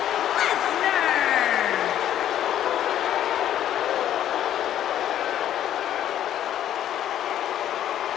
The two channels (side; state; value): right; quieter; 11.2 dB